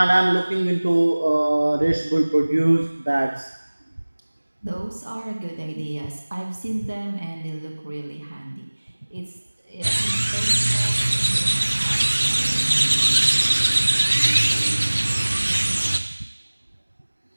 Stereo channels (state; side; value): inverted; both; correlation -1.00